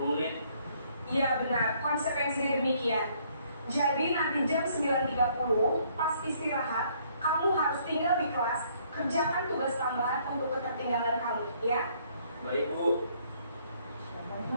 menit. Iya, benar. Konsekuensinya demikian. Jadi nanti jam 9.30 pas istirahat, kamu harus tinggal di kelas, kerjakan tugas tambahan untuk ketertinggalan kamu, ya? Baik Bu.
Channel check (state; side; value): inverted; both; correlation -0.65